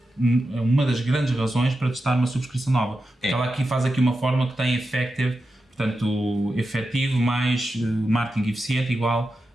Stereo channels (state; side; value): normal; both; correlation 0.90